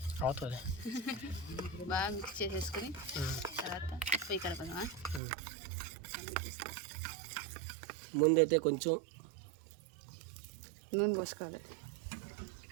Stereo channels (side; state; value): left; drops out; at 5.2 s